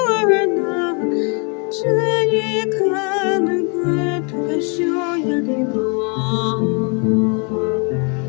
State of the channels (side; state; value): right; quieter; 35.0 dB